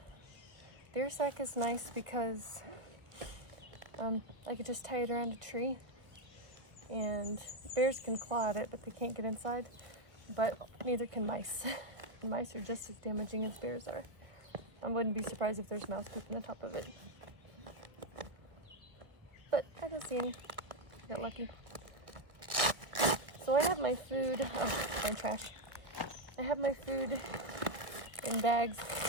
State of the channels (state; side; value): late; left; 1.3 ms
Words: The sack is nice because I could just tie it around a tree, and bears can claw at it, but they can't get inside. But neither can mice. Mice are just as damaging as bears are. I wouldn't be surprised if there's mouse poop on the top of it. But I don't see any. Got lucky. So I have my food. Oh, my trash. I have my food in bags